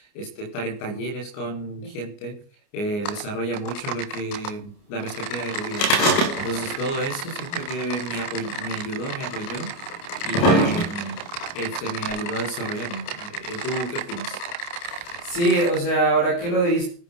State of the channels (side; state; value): right; late; 29 ms